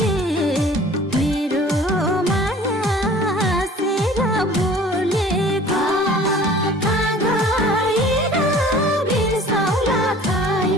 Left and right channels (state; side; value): normal; both; correlation 0.47